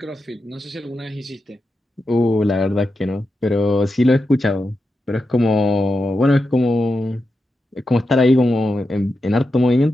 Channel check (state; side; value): normal; both; correlation 0.88